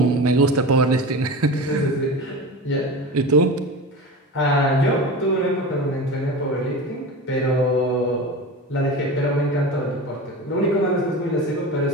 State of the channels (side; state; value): both; normal; correlation 0.29